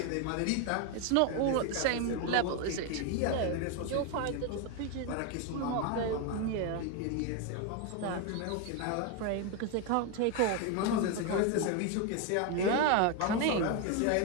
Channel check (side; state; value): both; different; correlation 0.02